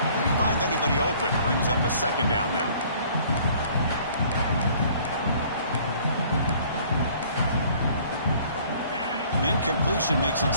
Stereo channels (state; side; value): inverted; both; correlation -0.56